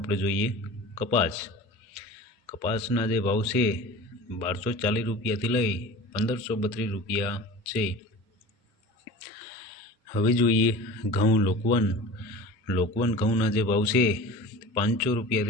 જોઈએ કપાસના જે ભાવ છે 1240 રૂપિયાથી લઈ 1532 રૂપિયા છે। હવે જોઈએ ઘઉં લોકવન ઘઉંના જે ભાવ છે 500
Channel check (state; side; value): normal; both; correlation 0.37